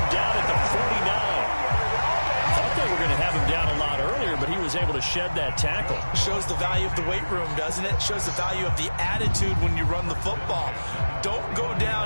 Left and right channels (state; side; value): inverted; both; correlation -1.00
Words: down at the 49. Thought they were going to have him down a lot earlier, but he was able to shed that tackle. Shows the value of the weight room, doesn't it? Shows the value of the attitude when you run the football. Don't go